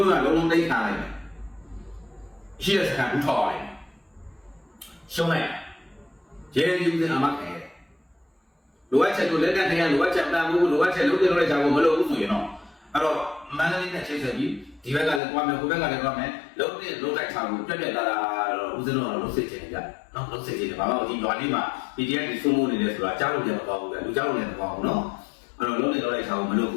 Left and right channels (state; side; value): drops out; right; at 15.2 s